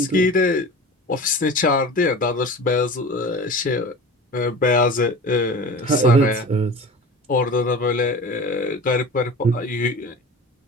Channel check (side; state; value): both; normal; correlation 0.35